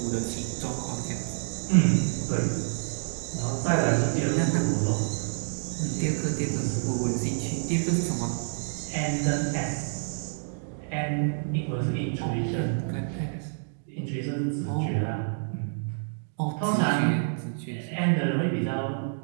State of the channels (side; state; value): left; silent; digital silence